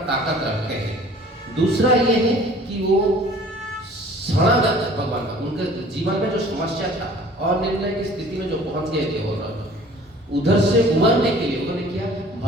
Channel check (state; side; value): normal; both; correlation 0.49